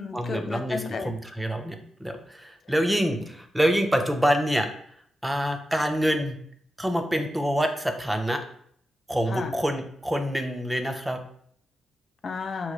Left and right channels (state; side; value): normal; both; correlation 0.91